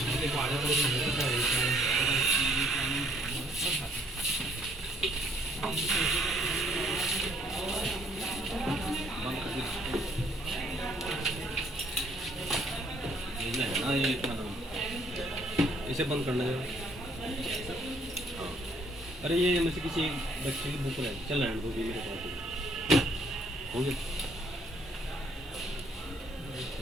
है ना, ये क्या नाम, इसे बंद करना है। हाँ, अरे ये में से किसी एक बच्चे की बुक है, चल रहने दो, भी मेरे पास हो गया।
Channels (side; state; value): both; normal; correlation 0.65